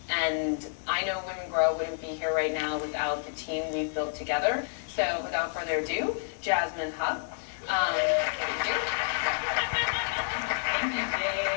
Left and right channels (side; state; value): right; silent; digital silence